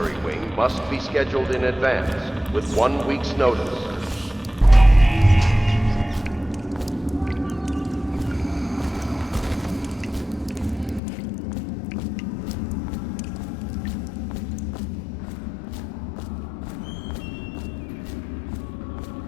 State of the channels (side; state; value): right; drops out; at 11.0 s